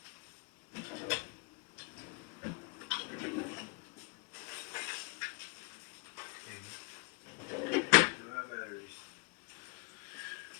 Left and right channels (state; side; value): quieter; right; 33.5 dB